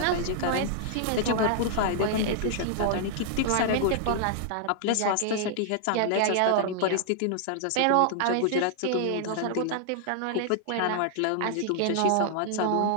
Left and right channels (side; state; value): both; different; correlation -0.01